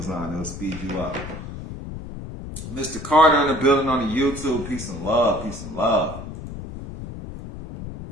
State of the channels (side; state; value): left; noise; rumble, 10 dB below the sound